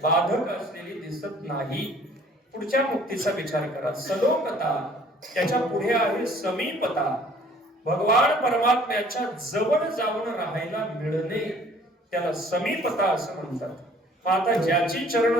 बाधक असलेली दिसत नाही. पुढच्या मुक्तीचा विचार करा. सलोकता, त्याच्या पुढे आहे समीपता. भगवान परमात्म्याच्या जवळ जाऊन राहायला मिळणे त्याला समीपता असं म्हणतात. आता ज्याची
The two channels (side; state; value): both; normal; correlation 0.55